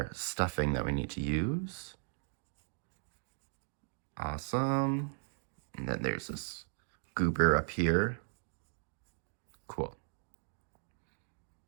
stuffing that we need to use. Awesome. And then there's this goober up here. Cool.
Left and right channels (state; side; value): silent; left; digital silence